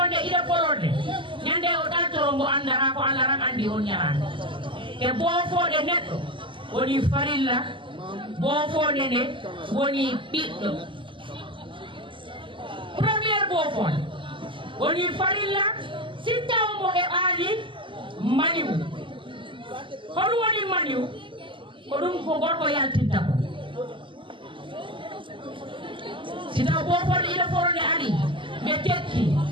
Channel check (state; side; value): late; left; 0.25 ms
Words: ida polonde nyande o datiro mo andara ko alaram andi on nyarande e bofonde neddo woni farilla bofonde ne woni biddo premier bofonde woni farilla sittaw mo e ali maniw hono woni maniw ko dum ko gorko yaltinta ko sita bofol ida forode ari be tekki